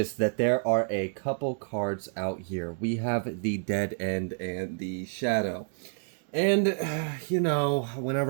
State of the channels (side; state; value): left; silent; digital silence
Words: that there are a couple cards out here. We have the Dead End and the Shadow. And, you know,